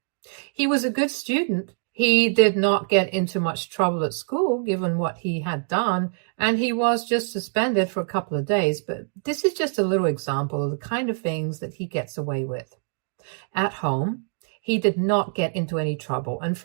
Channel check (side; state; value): left; silent; 62 dB below the other